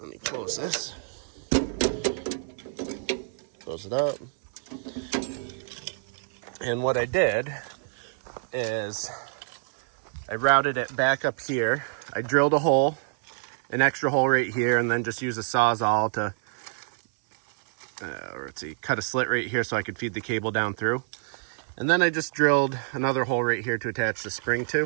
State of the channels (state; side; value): silent; left; 60 dB below the other